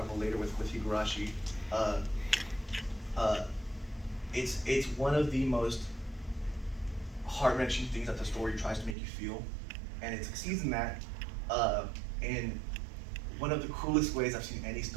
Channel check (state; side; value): drops out; left; at 9.0 s